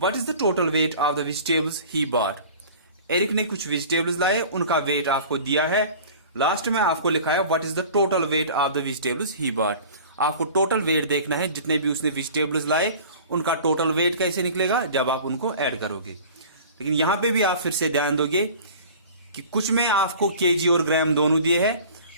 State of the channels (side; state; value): both; inverted; correlation -0.42